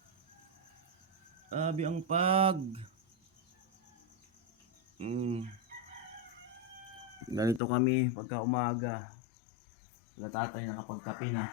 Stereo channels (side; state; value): right; drops out; at 7.6 s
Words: Grabe ang pag. Ganito kami pagka umaga. Sila tatay nakapagkape na.